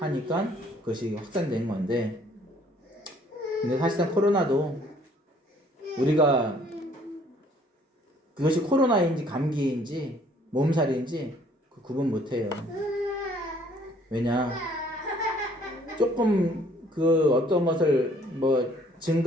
그것이 확산된 건데, 근데 사실상 코로나도 우리가 그것이 코로나인지 감기인지 몸살인지 그 구분 못해요. 왜냐, 조금 그 어떤 것을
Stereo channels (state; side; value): normal; both; correlation 0.60